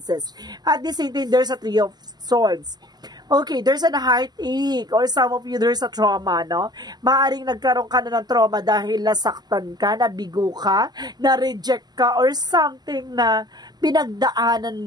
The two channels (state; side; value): late; left; 0.20 ms